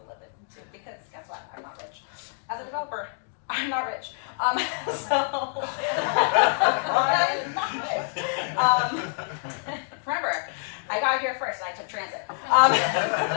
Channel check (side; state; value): right; silent; digital silence